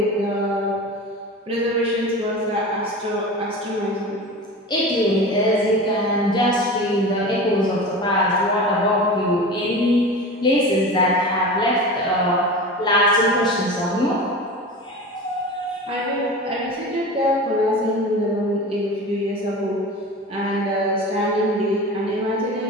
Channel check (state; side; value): normal; both; correlation 0.32